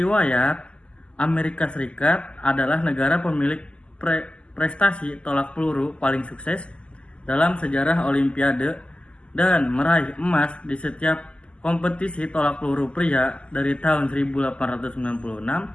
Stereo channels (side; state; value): right; late; 0.054 ms